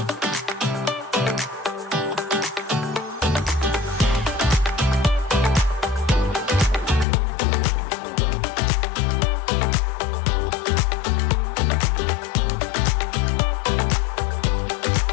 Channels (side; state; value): right; drops out; at 7.1 s